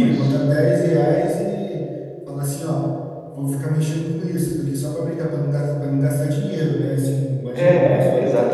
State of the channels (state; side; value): identical; both; correlation 1.00